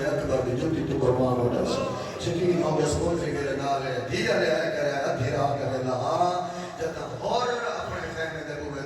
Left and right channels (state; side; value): identical; both; correlation 1.00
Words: اکبر دی جوتی تو قربان ہو جا سا یقین ہو گیا سکول میرے نالے دیا لے آئے کرے ادھی راہ کرے لہا جتا اور اپنے خیمے دے